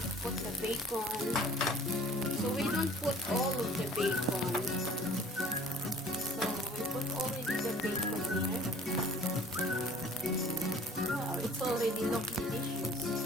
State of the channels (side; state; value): both; normal; correlation 0.50